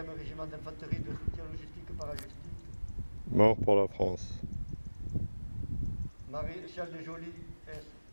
régiment d'infanterie de soutien logistique parachutistes. Mort pour la France. Maréchal des Jolis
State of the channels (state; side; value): inverted; both; correlation -1.00